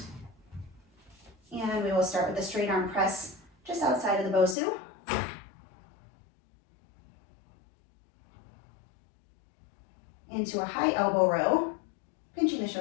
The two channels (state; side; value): drops out; right; at 4.5 s